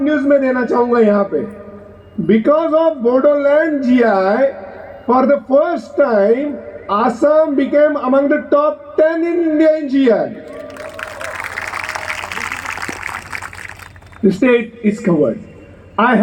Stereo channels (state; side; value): identical; both; correlation 1.00